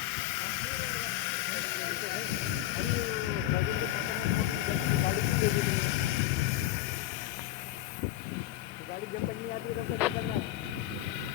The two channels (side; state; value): right; quieter; 14.3 dB